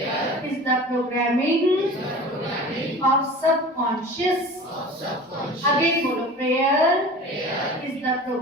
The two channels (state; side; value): normal; both; correlation 0.38